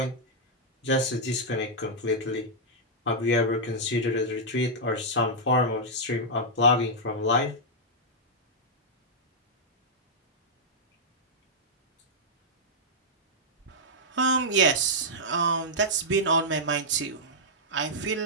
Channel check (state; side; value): normal; both; correlation -0.07